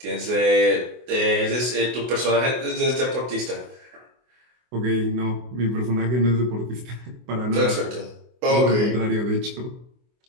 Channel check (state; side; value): late; left; 24 ms